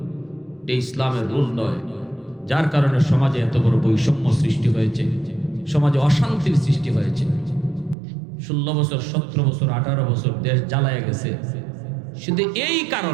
এই ইসলামের রুল নয়। যার কারণে সমাজে এত বড় বৈষম্য সৃষ্টি হয়েছে, সমাজে অশান্তির সৃষ্টি হয়েছে। 16 বছর 17 বছর 18 বছর দেশ জ্বালায় গেছে শুধু এই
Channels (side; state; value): left; drops out; at 8.0 s